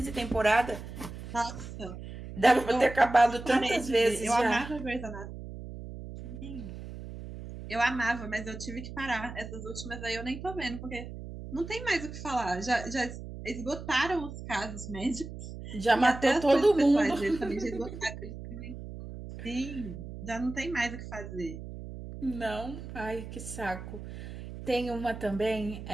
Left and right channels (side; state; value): right; noise; hum, 11 dB below the sound